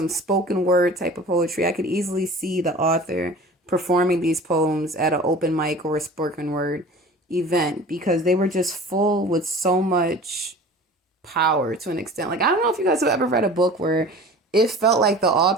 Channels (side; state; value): both; normal; correlation 0.41